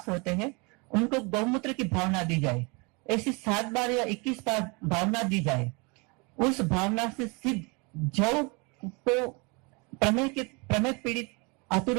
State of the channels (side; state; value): left; quieter; 29.5 dB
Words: होते हैं उनको गौमूत्र की भावना दी जाए। ऐसी 7 बार या 21 बार भावना दी जाए। उस भावना से सिद्ध जौ को प्रमेय पीड़ित